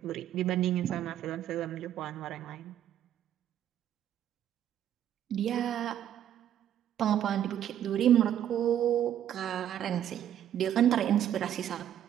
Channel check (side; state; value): left; quieter; 10.7 dB